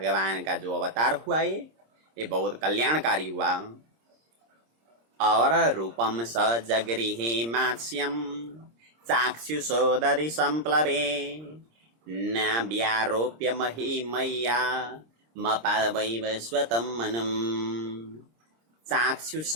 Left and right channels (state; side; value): late; left; 26 ms